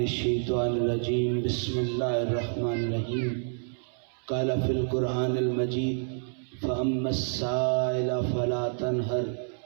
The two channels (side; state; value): left; silent; 59 dB below the other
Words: الرجیم بسم اللہ الرحمن الرحیم قال فی القرآن المجید فأما السائل فلا تنہر